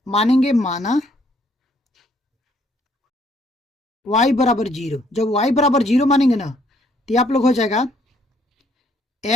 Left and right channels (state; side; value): normal; both; correlation 0.66